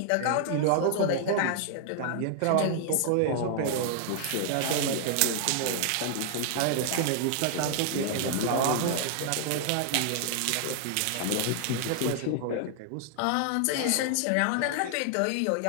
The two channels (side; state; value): both; different; correlation 0.00